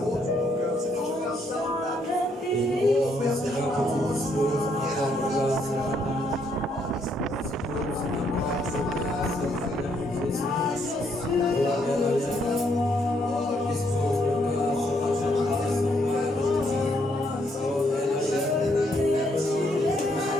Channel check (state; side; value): normal; both; correlation 0.72